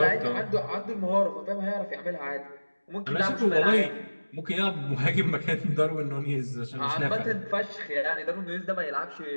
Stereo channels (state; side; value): inverted; both; correlation -1.00